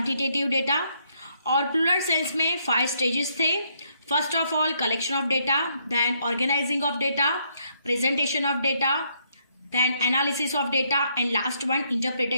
data और प्लूरल सेंस में 5 स्टेजेस थे. First of all collection of data, then organising of data, presentation of data, then analysis of data, and last one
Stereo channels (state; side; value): inverted; both; correlation -0.73